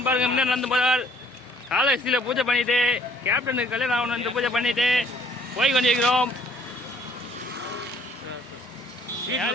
பாருங்க முன்னே நடந்து போறார். காலேஜில் பூஜை பண்ணிட்டு கேப்டனுக்கு கல்யாணம் ஆகணும் பூஜை பண்ணிட்டு போய் கொண்டிருக்கிறோம்.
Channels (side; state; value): both; normal; correlation 0.60